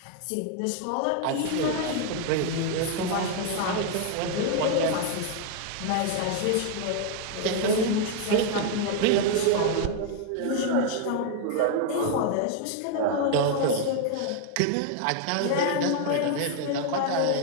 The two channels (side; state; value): both; different; correlation 0.00